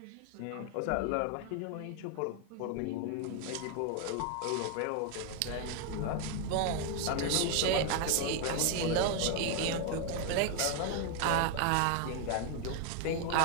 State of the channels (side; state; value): both; different; correlation 0.01